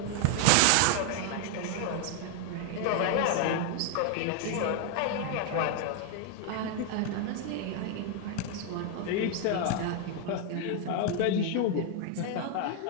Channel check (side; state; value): both; different; correlation 0.00